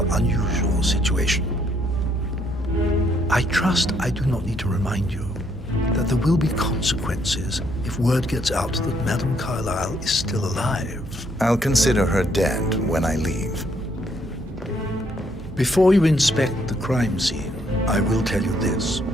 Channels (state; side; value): normal; both; correlation 0.70